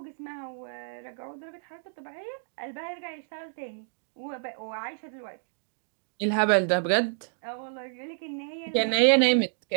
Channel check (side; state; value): left; silent; digital silence